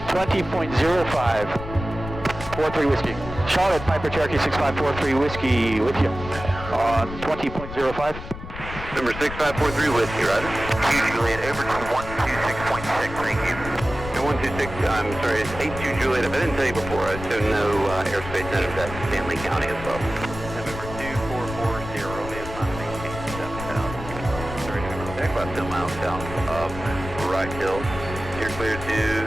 20.05, 43 Whiskey. Charlotte, Piper Cherokee 6543 Whiskey with you on 20.05. Number 6543 Whiskey, roger. Juliet, over to 126.6, thank you. No, 126, I'm sorry, it's 82 Juliet. If I didn't tell you before, I assume no airspace natives at Stanley County as well. November 2440, Romeo, climb maintain 7,000. Sorry, November, about 10 miles south of Wright Hill. You're clear to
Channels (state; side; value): noise; left; rumble, 10 dB below the sound